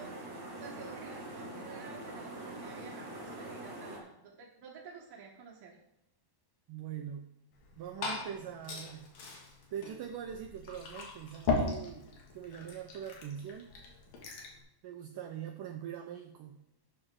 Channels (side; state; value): left; late; 1.1 ms